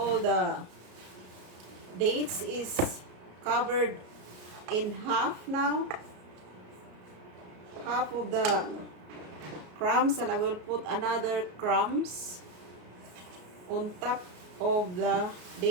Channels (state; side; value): late; left; 33 ms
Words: the dates is covered in half now. Half of the crumbs, and I will put another crumbs. on top of the